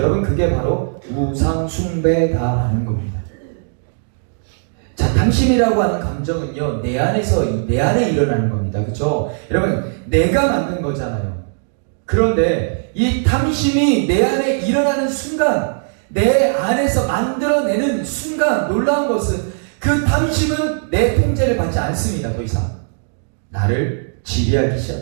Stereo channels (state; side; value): silent; left; digital silence